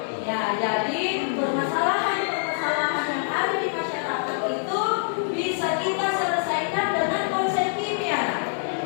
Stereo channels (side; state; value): right; silent; digital silence